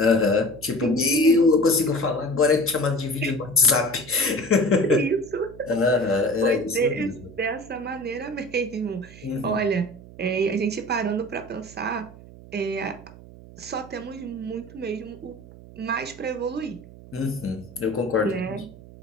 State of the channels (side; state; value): right; noise; hum, 19 dB below the sound